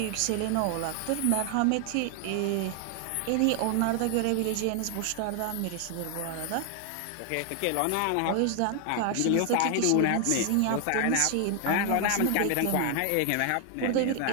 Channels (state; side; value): different; both; correlation 0.00